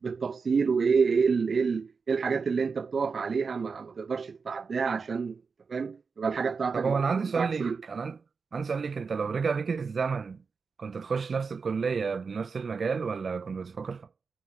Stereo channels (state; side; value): quieter; left; 5.1 dB